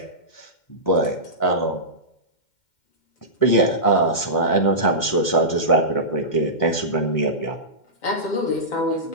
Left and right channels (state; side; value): late; right; 2.1 ms